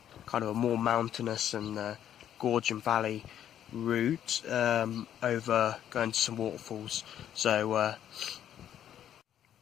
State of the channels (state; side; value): quieter; right; 10.4 dB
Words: kind of a more mountainous and gorge and valley route over going to some waterfalls. So